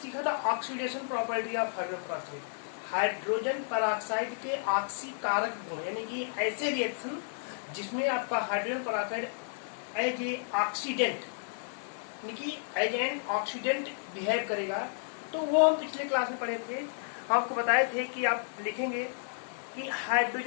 था oxidation property of hydrogen peroxide. Hydrogen peroxide के ऑक्सीकारक गुण, यानी कि ऐसे रिएक्शन जिसमें आपका hydrogen peroxide as a oxidant, यानी कि एज एन ऑक्सीडेंट बिहेव करेगा। तो वो हम पिछले क्लास में पढ़े थे। आपको बताए थे कि आप लिखेंगे कि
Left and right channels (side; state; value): right; silent; digital silence